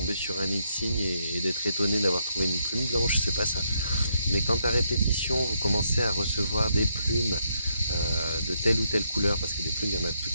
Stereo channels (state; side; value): inverted; both; correlation -0.77